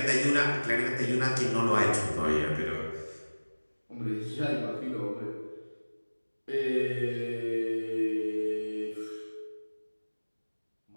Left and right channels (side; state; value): both; inverted; correlation -1.00